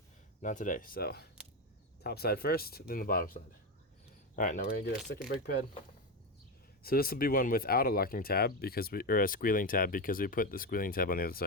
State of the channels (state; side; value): normal; both; correlation 0.13